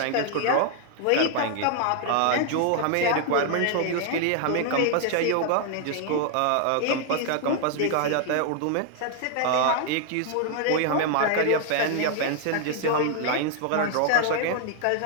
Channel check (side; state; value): both; different; correlation 0.00